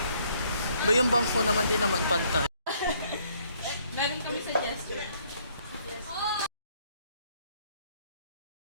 Ba yung bangko naman din naman pantay. Meron kami suggestion.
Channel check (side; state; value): both; inverted; correlation -0.66